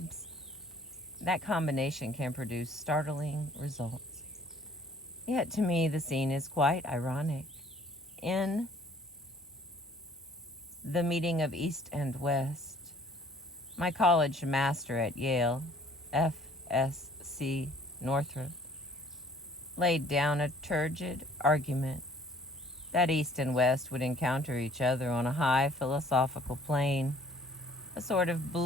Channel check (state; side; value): normal; both; correlation 0.56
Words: That combination can produce startling results. Yet to me, the scene is quite ironic. In the meeting of East and West, my college master at Yale, F.S.C. Northrop, laid down a turgid argument that East and West would encounter each other on a high philosophical plane, a sort of